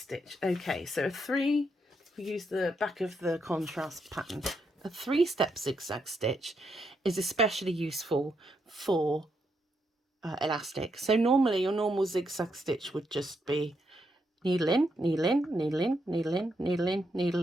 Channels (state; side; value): normal; both; correlation 0.79